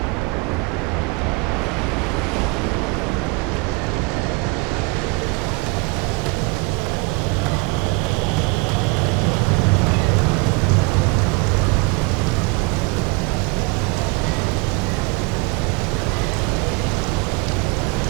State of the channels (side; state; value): left; quieter; 26.6 dB